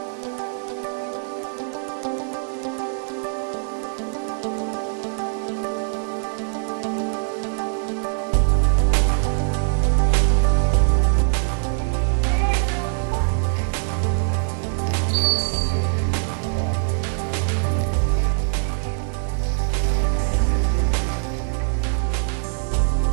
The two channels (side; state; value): left; silent; 64 dB below the other